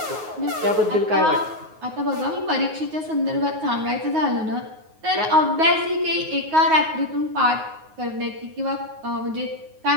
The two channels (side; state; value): left; late; 9.4 ms